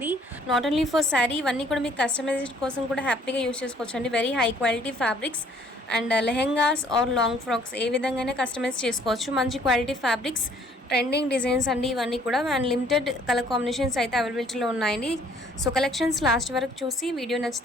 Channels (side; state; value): both; normal; correlation 0.60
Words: నాట్ ఓన్లీ ఫర్ శారీ, ఇవన్నీ కూడా మీకు కస్టమైజేషన్ కోసం కూడా హ్యాపీగా యూస్ చేసుకోవచ్చు అండి. Very high quality fabrics and lehengas or long frocks ఏ విధంగానే కస్టమైజ్ చేసుకోవచ్చు. మంచి క్వాలిటీ ఫ్యాబ్రిక్స్, ట్రెండింగ్ డిజైన్స్ అండి ఇవన్నీ కూడా. అండ్ లిమిటెడ్ కలర్ కాంబినేషన్స్ అయితే అవైలబిలిటీలో ఉన్నాయండి. సో కలెక్షన్స్ లాస్ట్ వరకు చూసి వీడియో